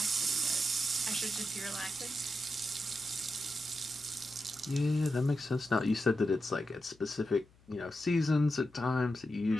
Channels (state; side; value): noise; left; hum, 29 dB below the sound